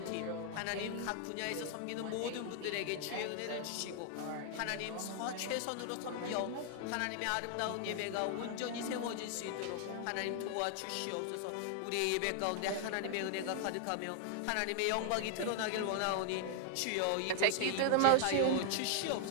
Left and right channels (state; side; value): different; both; correlation 0.00